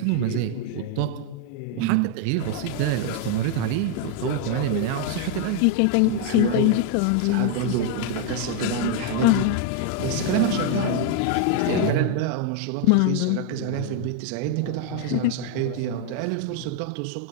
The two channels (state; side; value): different; both; correlation 0.01